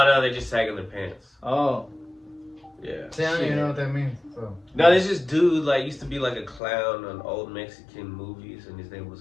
they just sagging their pants. Oh. Yeah. See, I don't even know what that means. So. No, there's this dude like used to be like a clown on old Mexican movies, and his name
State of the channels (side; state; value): right; drops out; at 6.6 s